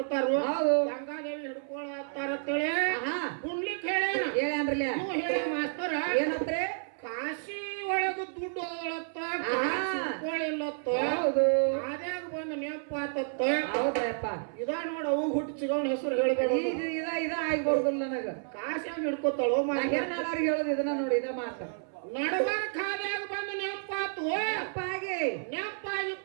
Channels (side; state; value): left; silent; 57 dB below the other